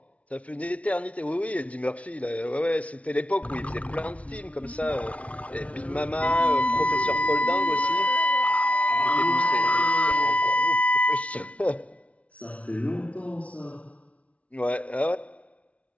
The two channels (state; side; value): late; right; 0.065 ms